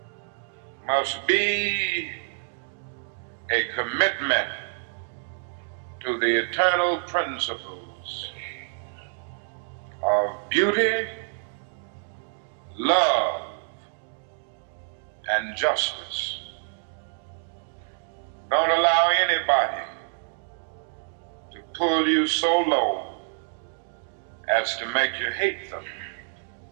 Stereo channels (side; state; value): left; silent; 60 dB below the other